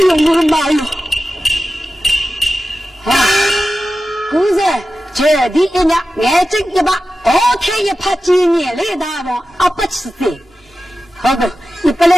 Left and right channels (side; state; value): both; normal; correlation 0.93